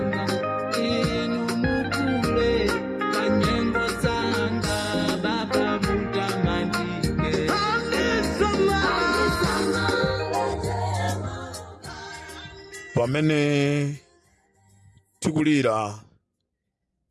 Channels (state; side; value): identical; both; correlation 1.00